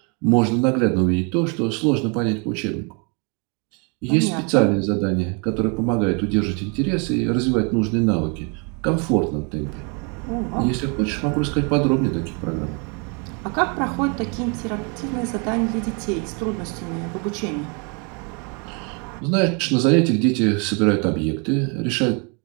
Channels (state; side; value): quieter; left; 34.1 dB